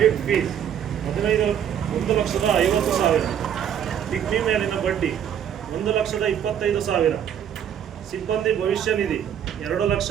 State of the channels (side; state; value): left; quieter; 9.2 dB